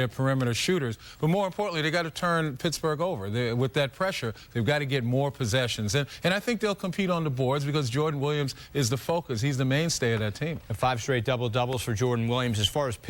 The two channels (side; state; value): both; identical; correlation 1.00